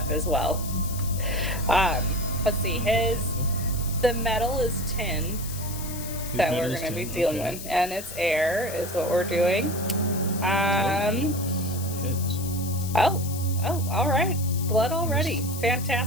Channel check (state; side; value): noise; left; hiss, 11 dB below the sound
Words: as well. Let's see, the metal is tin that we're going to be dealing with, and it's air is what we're doing. Heads. Oh, all right. Blood already.